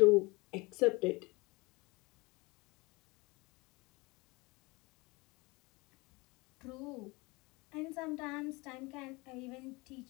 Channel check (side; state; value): right; quieter; 24.9 dB